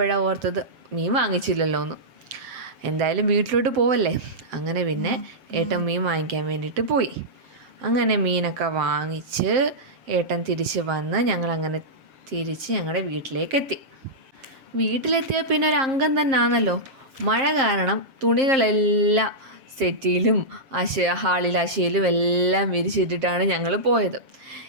ഓർത്തത് മീൻ വാങ്ങിച്ചില്ലല്ലോ എന്ന്. എന്തായാലും വീട്ടിലോട്ട് പോവല്ലേ. അങ്ങനെ പിന്നെ ഏട്ടൻ മീൻ വാങ്ങിക്കാൻ വേണ്ടിയിട്ട് പോയി. അങ്ങനെ മീനൊക്കെ വാങ്ങിച്ച് ഏട്ടൻ തിരിച്ച് വന്ന് ഞങ്ങളങ്ങനെ തിരിച്ച് ഞങ്ങളുടെ വീട്ടിലേക്കെത്തി. വീട്ടിലെത്തിയ പിന്നെ ഒരു അംഗം തന്നെ ആണല്ലോ. മഴ കാരണം തുണികളെല്ലാം സെറ്റിയിലും ഹാളിൽ അശയിലും എല്ലാം വിരിച്ചിട്ടിട്ടാണ് ഞങ്ങൾ പോയത്.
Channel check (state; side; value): late; left; 7.5 ms